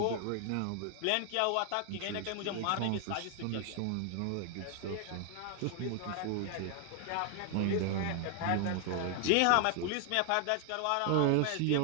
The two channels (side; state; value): both; different; correlation 0.00